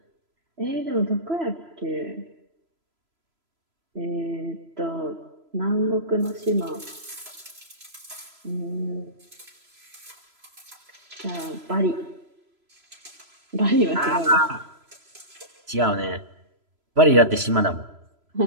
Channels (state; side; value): late; left; 3.0 ms